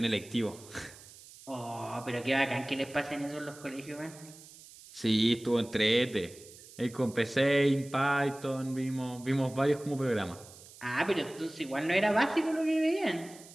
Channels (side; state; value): right; noise; hiss, 20 dB below the sound